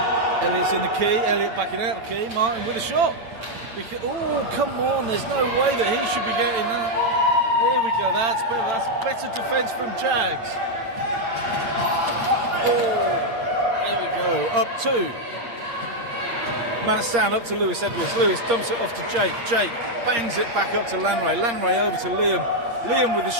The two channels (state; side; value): late; left; 8.6 ms